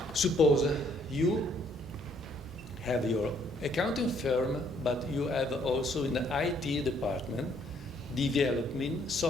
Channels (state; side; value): normal; both; correlation 0.66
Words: Suppose you have your accounting firm, but you have also in the IT department developing